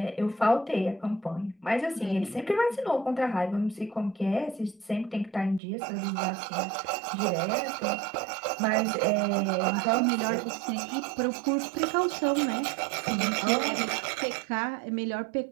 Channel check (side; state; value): left; drops out; at 5.6 s